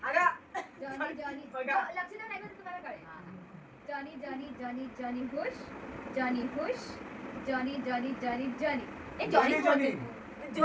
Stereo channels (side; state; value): both; identical; correlation 1.00